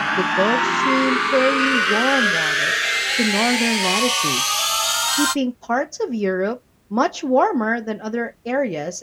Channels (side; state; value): both; identical; correlation 1.00